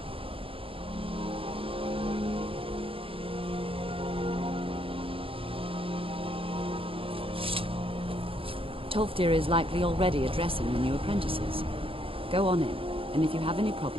Tolfdir is likely already addressing the new apprentices. Go on in, and if you have any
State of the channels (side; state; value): left; late; 0.27 ms